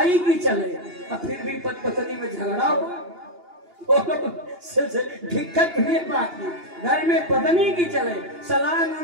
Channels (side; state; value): left; late; 2.8 ms